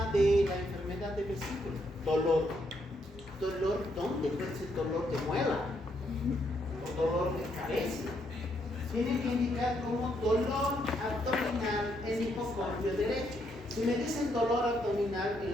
de la enfermedad de vesícula? Dolor. ¿Dolor dónde? Puede ser dolor de muela o dolor de cabeza. Tiene que indicar como dolor abdominal en hipocondrio derecho. Si me dicen dolor abdominal, el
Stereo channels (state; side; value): normal; both; correlation 0.75